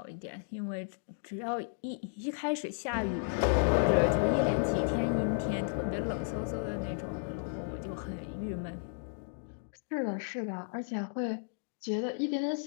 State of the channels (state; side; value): silent; right; digital silence